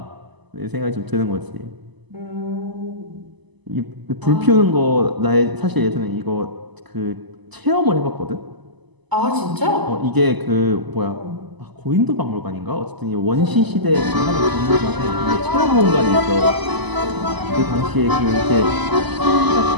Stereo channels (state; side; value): late; left; 1.0 ms